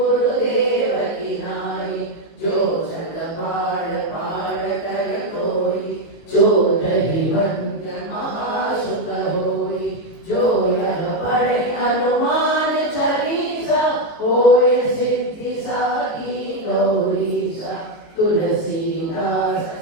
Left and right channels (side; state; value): right; late; 19 ms